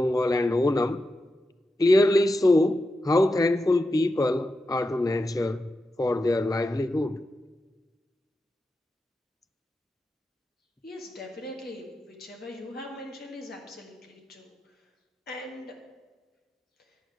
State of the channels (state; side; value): normal; both; correlation 0.89